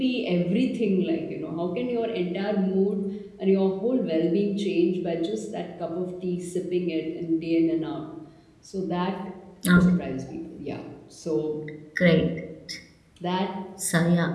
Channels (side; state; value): both; identical; correlation 1.00